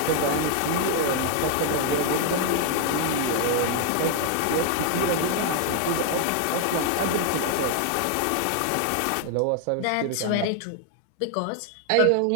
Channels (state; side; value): different; both; correlation 0.00